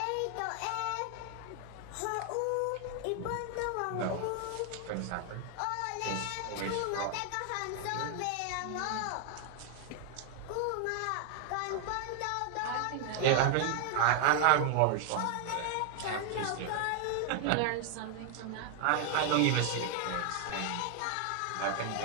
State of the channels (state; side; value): different; both; correlation 0.00